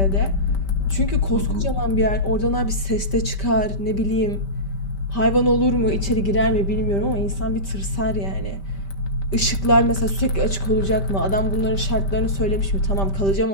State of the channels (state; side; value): late; right; 5.1 ms